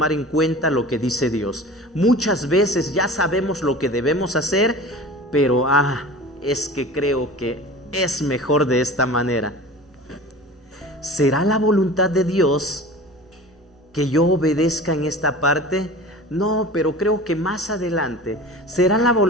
en cuenta lo que dice Dios. Muchas veces ya sabemos lo que debemos hacer, pero es que creo que es mejor de esta manera. ¿Será la voluntad de Dios que yo obedezca en esta parte? No, pero creo que más adelante. ¿Será la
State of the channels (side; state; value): both; normal; correlation 0.38